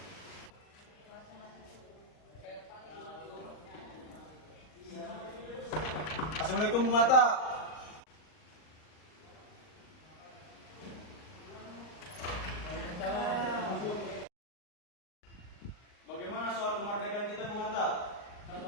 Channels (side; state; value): right; late; 39 ms